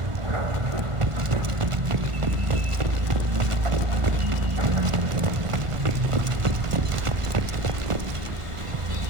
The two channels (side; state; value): left; late; 1.4 ms